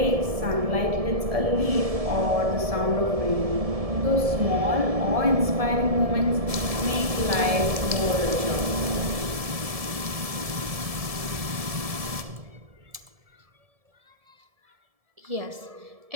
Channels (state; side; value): late; left; 1.7 ms